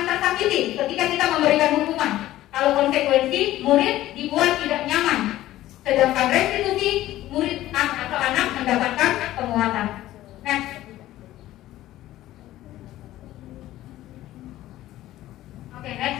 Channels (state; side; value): quieter; right; 14.8 dB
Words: tersakiti ketika kita memberikan hukuman. Kalau konsekuensi, murid dibuat tidak nyaman. Sedangkan restitusi, murid atau anak mendapatkan penguatan. Next. Oke,